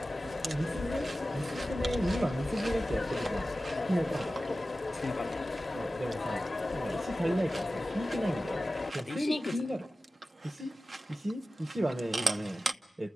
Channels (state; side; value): normal; both; correlation 0.95